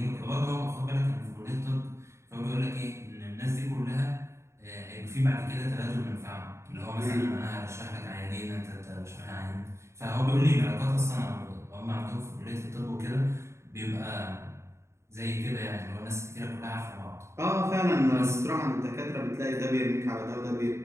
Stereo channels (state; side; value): late; left; 0.13 ms